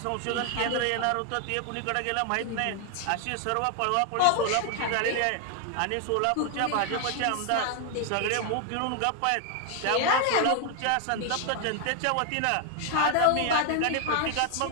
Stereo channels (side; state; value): both; different; correlation 0.00